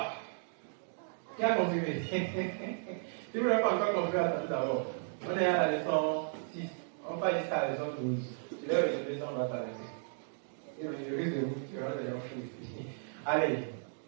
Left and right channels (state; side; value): silent; left; digital silence